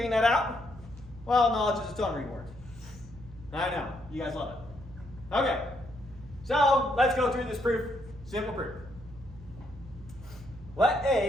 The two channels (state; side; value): noise; right; hum, 18 dB below the sound